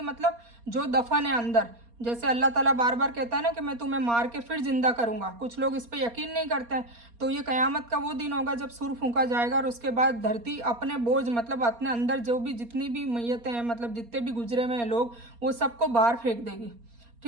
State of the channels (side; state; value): left; late; 4.3 ms